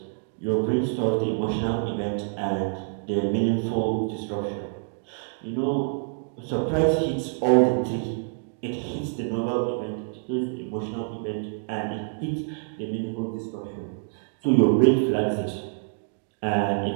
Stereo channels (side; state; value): left; silent; digital silence